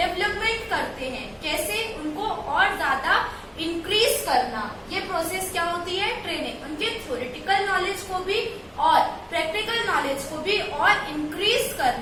करते हैं। कैसे? उनको और ज्यादा इंक्रीज करना। ये प्रोसेस क्या होती है? ट्रेनिंग। उनके थ्योरेटिकल नॉलेज को भी और प्रैक्टिकल नॉलेज को भी और इंक्रीज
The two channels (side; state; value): both; identical; correlation 1.00